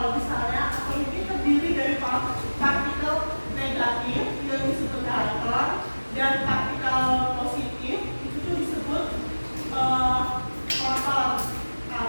misalnya atom ini terdiri dari partikel negatif yang disebut elektron dan partikel positif itu tuh disebut proton,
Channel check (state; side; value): inverted; both; correlation -1.00